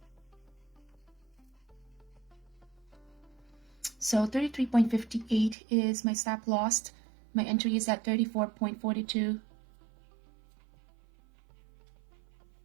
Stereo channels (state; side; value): drops out; left; at 5.6 s